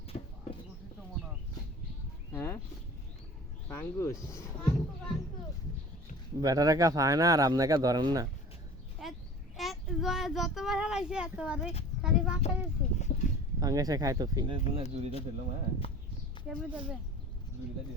বসি তো মনে হয় হ্যাঁ পাঙ্গুস বাঙ্কু বাঙ্কু বেটারা কা খায় না আর আপনাকে ধরেন না যতবার হারাইছে এতবারে খালি বাঁকা গেছে পাঙ্গাসে খায় তো ফি জুরিটা দিল হ্যাঁ কেমন দেবে জুরিটা দিল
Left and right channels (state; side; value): normal; both; correlation 0.42